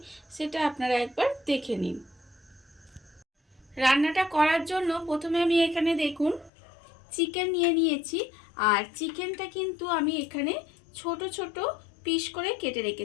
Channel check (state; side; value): drops out; right; at 6.5 s